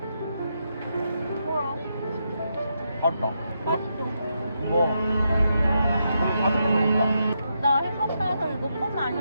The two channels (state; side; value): inverted; both; correlation -0.82